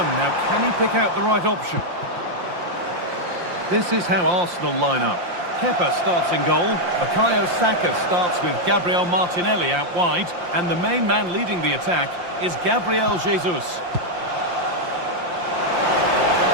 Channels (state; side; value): late; left; 5.7 ms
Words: Now, can he pick out the right option? This is how Arsenal line up. Kepa starts in goal. Bukayo Saka starts with Gabriel Martinelli out wide. And the main man leading the attack is Gabriel Jesus.